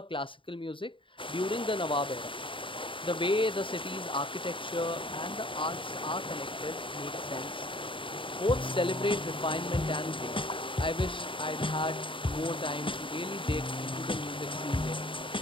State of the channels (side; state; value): right; late; 0.25 ms